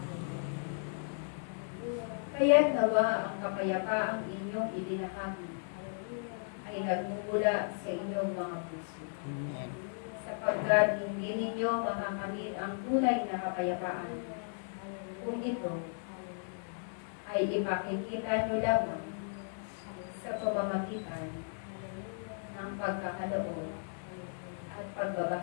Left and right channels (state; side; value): silent; right; 54 dB below the other